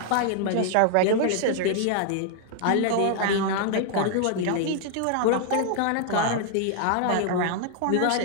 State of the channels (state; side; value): different; both; correlation 0.00